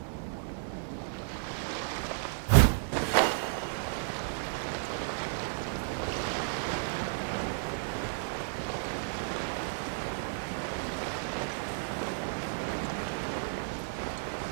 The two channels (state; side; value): silent; left; 56 dB below the other